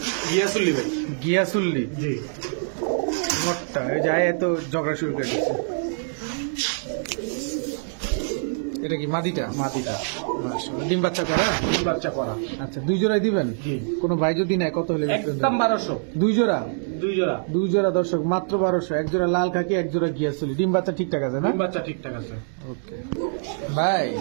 গিয়াসুল্লি ভাই। গিয়াসুল্লি জি নটটা। এই যায় এত ঝগড়া শুরু করে দিচ্ছে। এটা কি মাদিটা? মাটিটা। মাশাআল্লাহ। ডিম বাচ্চা করা? ডিম বাচ্চা করা। আচ্ছা 2 জোড়াই দিবেন? জি। কোনো ভাই যদি নেয় কত হলে বিক্রি একদম করবেন? 1200। 2 জোড়া? 2 জোড়া। 2 জোড়া দর্শক মাত্র 1200। এক জোড়া লাল খাকি, এক জোড়া গিয়াসুলি। ডিম বাচ্চা ঠিকঠাক আছে না? ডিম বাচ্চা ঠিকঠাক আছে। ওকে ভাই।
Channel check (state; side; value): silent; left; digital silence